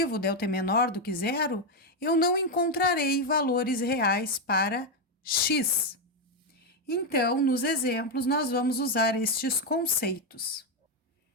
o delta é menor do que zero, eu não encontrarei valores reais para x. Então, nos exemplos, nós vamos usar estes conceitos.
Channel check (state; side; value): normal; both; correlation 0.05